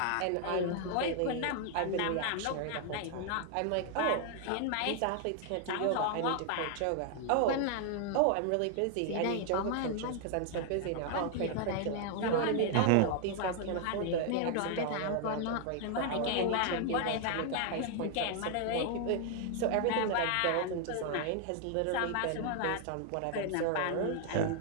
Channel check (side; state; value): both; different; correlation 0.00